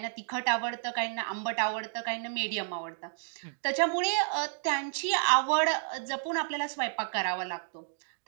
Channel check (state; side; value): silent; left; digital silence